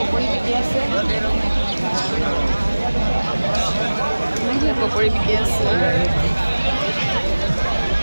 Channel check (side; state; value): both; inverted; correlation -1.00